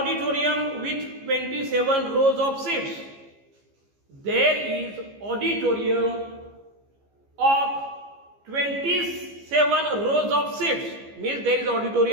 with 27 rows of seats. There is auditorium of 27 rows of seats, means there is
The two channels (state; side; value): late; left; 15 ms